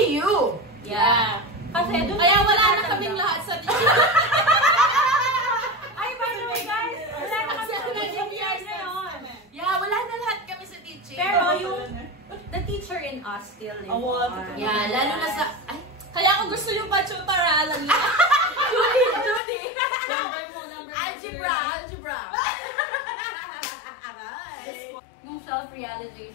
you! Yeah. Kasi doon Kaya wala na natatanggap. kaming lahat sa teacher. Ay, by the way guys, wala na kami sa teaching years ngayon. Yeah, wala na lahat kami sa teaching. Pero yung the teacher in us still lives on. Yeah, lalo na sa... Ay, Kaya kung gusto yung pa-tutorial, Judy! number mo, number Algebra! Yung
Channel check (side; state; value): right; drops out; at 19.4 s